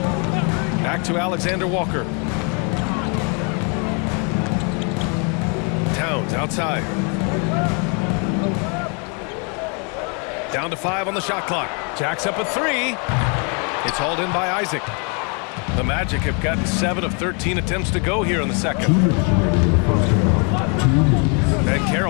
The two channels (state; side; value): quieter; right; 36.1 dB